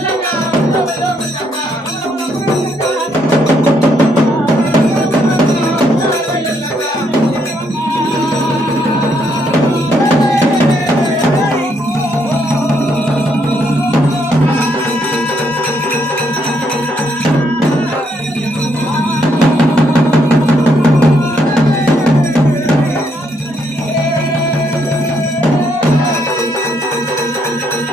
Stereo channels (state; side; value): normal; both; correlation 0.73